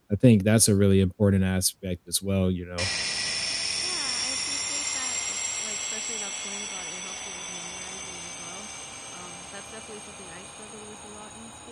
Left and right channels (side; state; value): both; identical; correlation 1.00